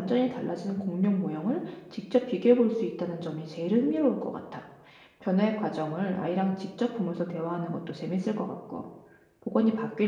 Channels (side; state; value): both; identical; correlation 1.00